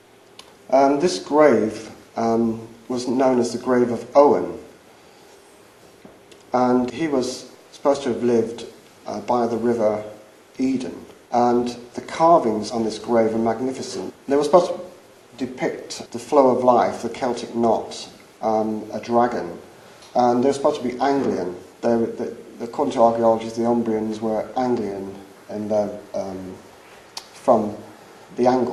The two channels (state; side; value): identical; both; correlation 1.00